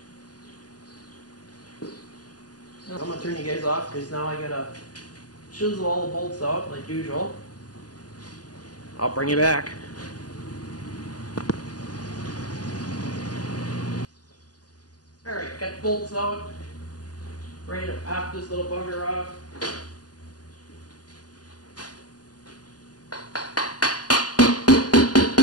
I'm going to turn you guys off because now I gotta chisel all the bolts out like usual. I'll bring you back. Alright, got the bolts out. Ready to pop this little bugger off.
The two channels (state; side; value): late; right; 0.68 ms